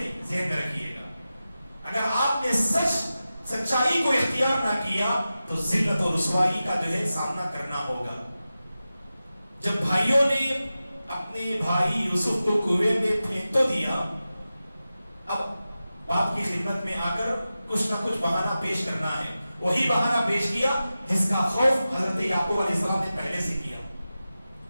ذہن میں رکھیے گا، اگر آپ نے سچائی کو اختیار نہ کیا تو ذلت اور رسوائی کا جو ہے سامنا کرنا ہوگا. جب بھائیوں نے اپنے بھائی یوسف کو کنویں میں پھینک تو دیا، اب باپ کی خدمت میں آ کر کچھ نہ کچھ بہانہ پیش کرنا ہے. وہی بہانہ پیش کیا جس کا خوف حضرت یعقوب علیہ السلام نے پہلے سے کیا.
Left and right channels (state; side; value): inverted; both; correlation -0.94